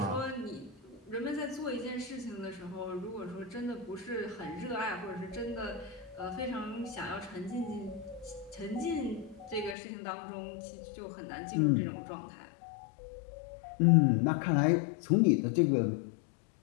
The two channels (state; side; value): drops out; right; at 9.8 s